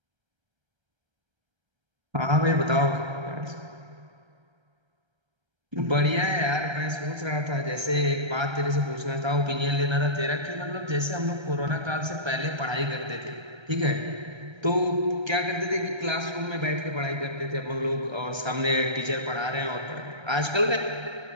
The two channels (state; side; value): late; left; 1.3 ms